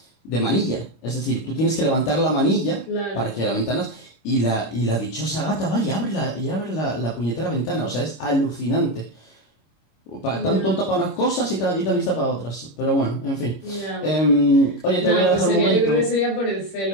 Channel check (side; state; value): right; late; 26 ms